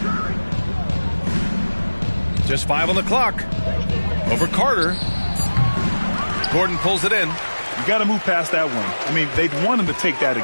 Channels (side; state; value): both; inverted; correlation -1.00